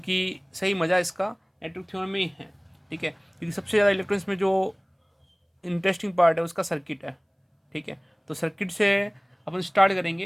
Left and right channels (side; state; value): both; identical; correlation 1.00